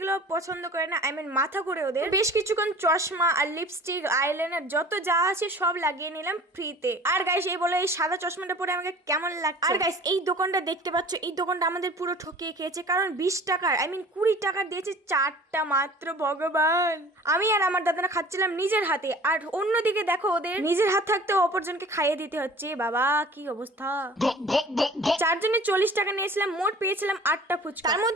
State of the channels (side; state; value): both; normal; correlation 0.45